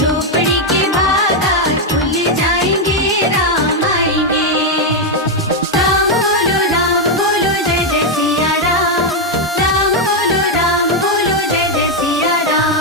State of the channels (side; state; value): both; normal; correlation 0.02